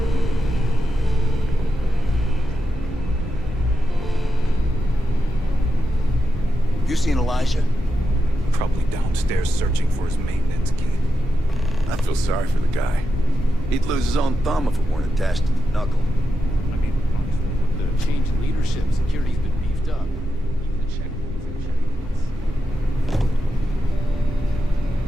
You seen Elijah? Probably downstairs searching for his maintenance key. I feel sorry for the guy. He'd lose his own thumb if it weren't attached to the knuckle. I mean, honestly, with the change in leadership, security's been beefed up. Even the checkpoints and checkpoints.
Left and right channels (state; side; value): normal; both; correlation 0.87